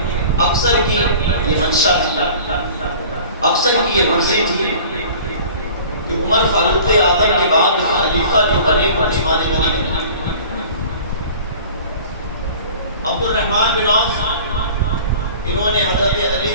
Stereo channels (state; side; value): inverted; both; correlation -0.44